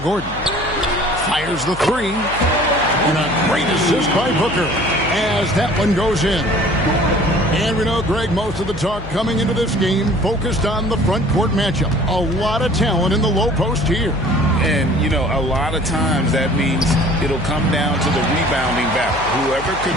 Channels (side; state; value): left; noise; hum, 13 dB below the sound